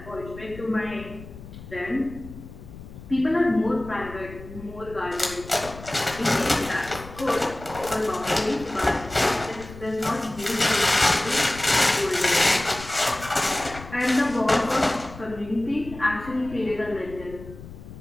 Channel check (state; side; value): noise; left; rumble, 15 dB below the sound